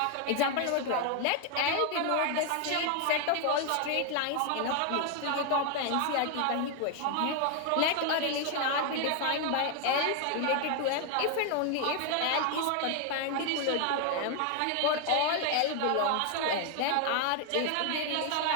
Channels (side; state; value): both; different; correlation 0.00